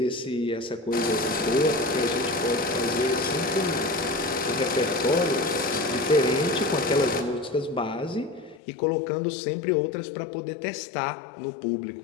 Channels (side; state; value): right; drops out; at 8.6 s